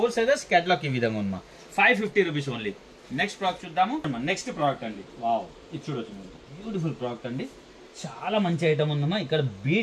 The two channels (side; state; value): both; identical; correlation 1.00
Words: sizes. Catalogue ఈ విధంగా ఉంది మా. 550 రూపీస్ ఓన్లీ. నెక్స్ట్ ప్రోడక్ట్ చూద్దాము. నెక్స్ట్ ప్రోడక్ట్ అండి. వావ్, ఇది చూడొచ్చు మీరు, బ్యూటిఫుల్ ప్రోడక్ట్ అండి. చాలా మంచి ఐటమ్ ఉందమ్మా. ఇక్కడ